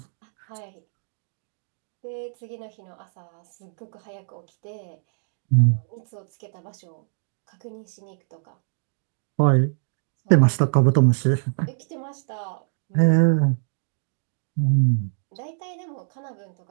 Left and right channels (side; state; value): left; silent; digital silence